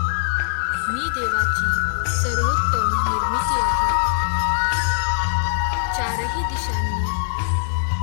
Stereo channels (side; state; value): right; silent; digital silence